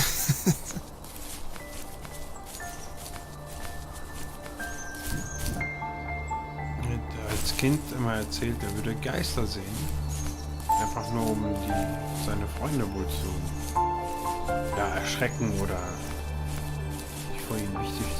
Als Kind immer erzählt, er würde Geister sehen. Einfach nur um seine Freunde wohl zu erschrecken oder sich vor ihnen wichtig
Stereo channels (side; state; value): both; identical; correlation 1.00